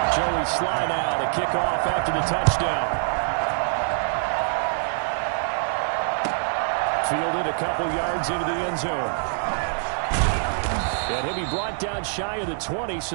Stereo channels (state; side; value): silent; left; digital silence